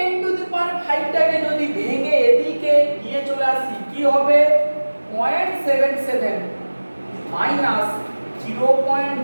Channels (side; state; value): both; inverted; correlation -1.00